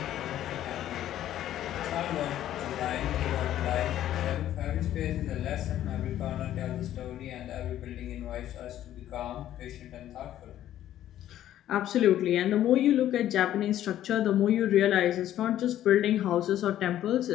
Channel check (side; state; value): right; quieter; 12.2 dB